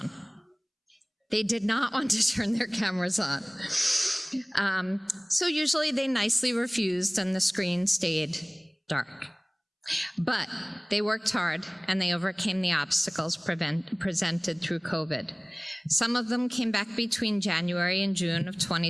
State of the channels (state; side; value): identical; both; correlation 1.00